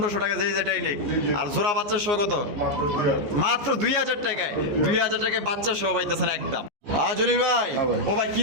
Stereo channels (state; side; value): late; left; 14 ms